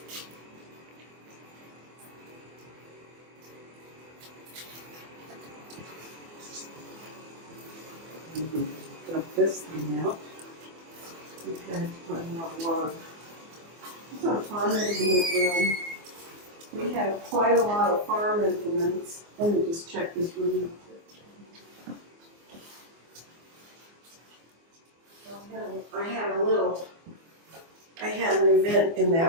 Dump this thing out. We've had quite a lot of water. This is our farm implement room. We have quite a lot of farm implements. Let me just check this room. I had an event in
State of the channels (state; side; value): late; left; 24 ms